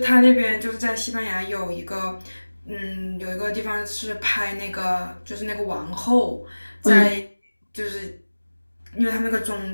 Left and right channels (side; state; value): both; inverted; correlation -1.00